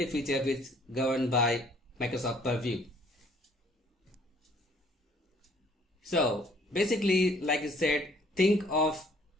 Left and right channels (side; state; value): both; normal; correlation 0.60